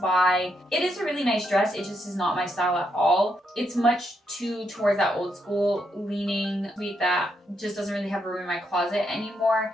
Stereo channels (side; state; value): both; normal; correlation 0.79